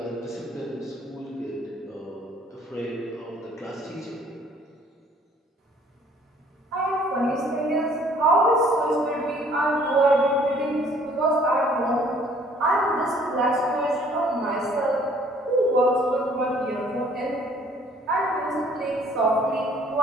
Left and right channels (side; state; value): both; normal; correlation 0.58